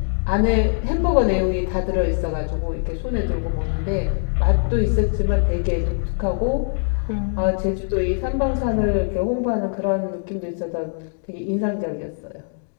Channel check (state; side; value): silent; right; digital silence